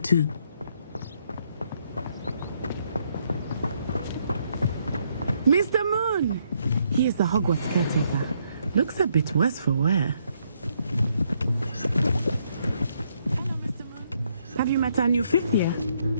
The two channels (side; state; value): both; inverted; correlation -0.73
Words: Mr. Moon! He is the Hogwarts caretaker. Looks a bit worse for wear. Have you met our new fifth year?